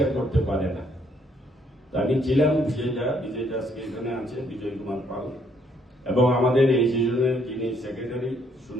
করতে পারে না। আমি ছিলাম বিজয় দাসকে এখানে আছে, বিজয় কুমার পাল, এবং আমাদের এই সিজনের যিনি সেক্রেটারি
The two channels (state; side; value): normal; both; correlation 0.69